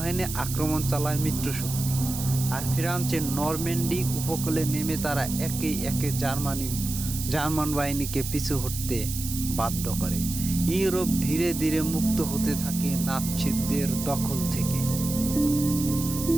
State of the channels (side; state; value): right; noise; hiss, 7 dB below the sound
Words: আক্রমণ চালায় মিত্রশক্তি। আর ফ্রান্সের নরম্যান্ডি উপকূলে নেমে তারা একে একে জার্মান বাহিনীকে পিছু হটতে বাধ্য করে। ইউরোপ ধীরে ধীরে মুক্ত হতে থাকে নাৎসিদের দখল থেকে।